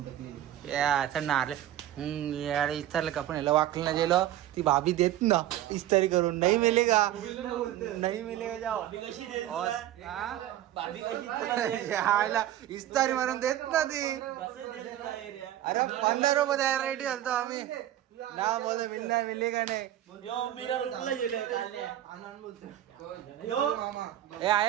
इस्तारला का पण याला वाकलं ना गेलो. ती भाभी देत ना इस्तारी करून. नाही मिलेगा, नाही मिलेगा. जाओ इस्तारी मारून देत ना ती. अरे 15 रुपये द्यायला रेडी झालतो आम्ही ना. बोल मिलना मिलेगा नाही.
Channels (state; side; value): quieter; left; 12.9 dB